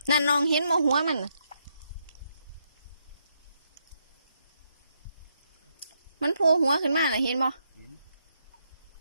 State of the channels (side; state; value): both; inverted; correlation -0.78